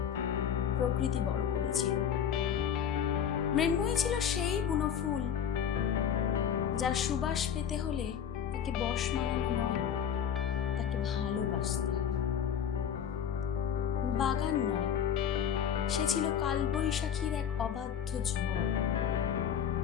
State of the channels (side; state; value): right; quieter; 8.4 dB